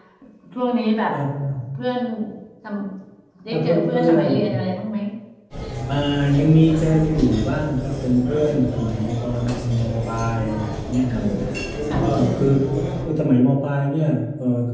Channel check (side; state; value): both; identical; correlation 1.00